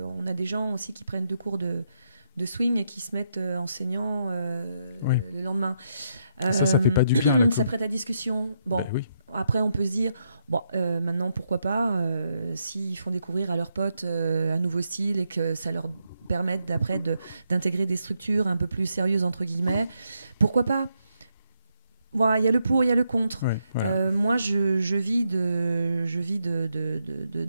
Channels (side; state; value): both; inverted; correlation -0.80